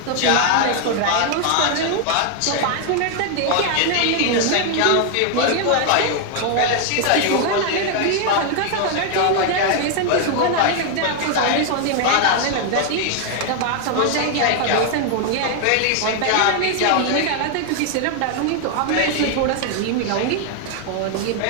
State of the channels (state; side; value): different; both; correlation 0.00